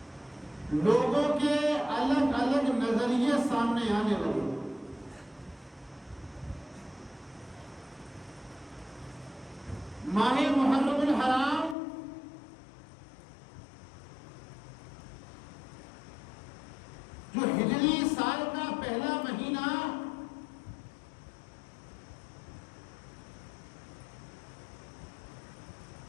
لوگوں کے الگ الگ نظریے سامنے آنے لگے۔ ماہ محرم الحرام جو ہجری سال کا پہلا مہینہ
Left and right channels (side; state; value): right; drops out; at 11.8 s